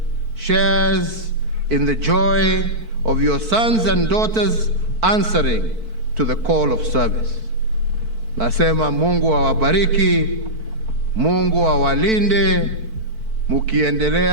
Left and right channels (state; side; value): late; left; 4.5 ms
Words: shares in the joy of your sons and daughters answering to the call of service. Nasema Mungu awabariki, Mungu awalinde,